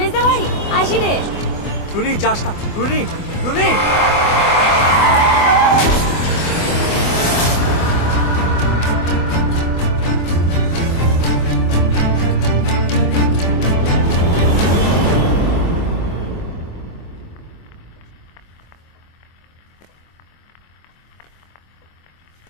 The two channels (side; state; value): right; late; 24 ms